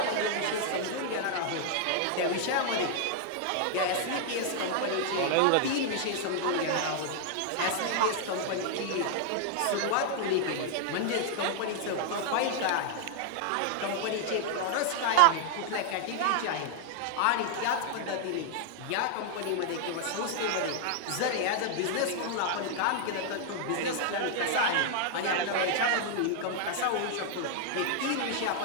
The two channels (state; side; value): different; both; correlation 0.00